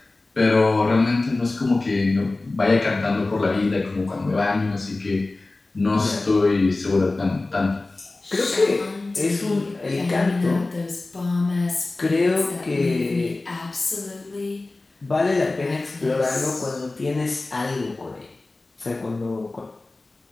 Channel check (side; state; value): right; quieter; 3.2 dB